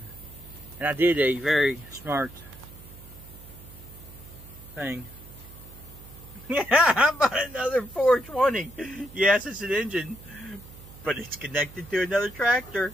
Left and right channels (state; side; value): noise; right; hum, 18 dB below the sound